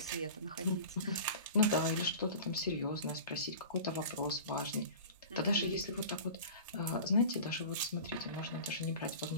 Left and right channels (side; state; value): both; inverted; correlation -0.37